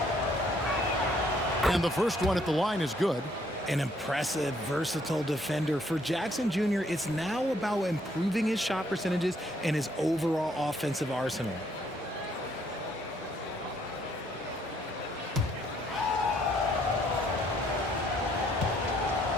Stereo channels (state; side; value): normal; both; correlation 0.67